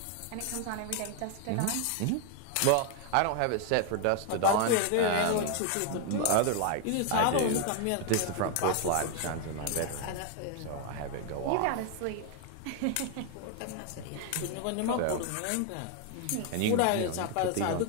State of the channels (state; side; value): different; both; correlation 0.01